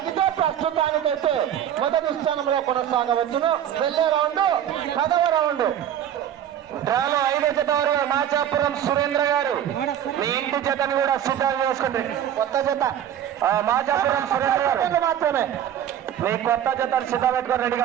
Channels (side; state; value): left; quieter; 10.3 dB